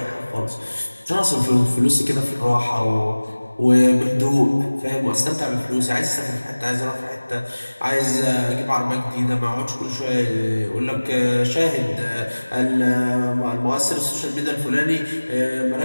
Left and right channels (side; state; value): both; inverted; correlation -1.00